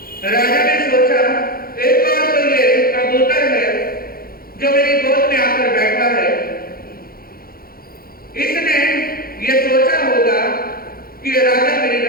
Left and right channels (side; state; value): right; late; 0.43 ms